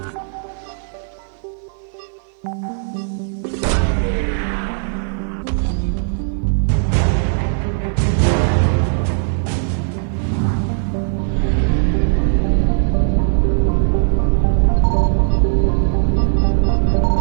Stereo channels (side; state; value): left; silent; 55 dB below the other